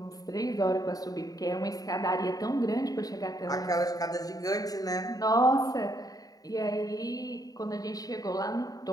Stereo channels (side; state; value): right; late; 0.18 ms